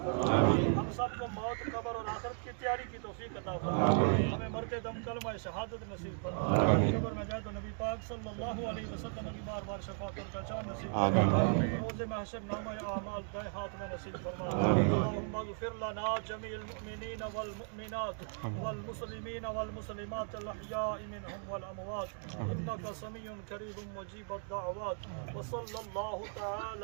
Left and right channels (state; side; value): silent; left; 54 dB below the other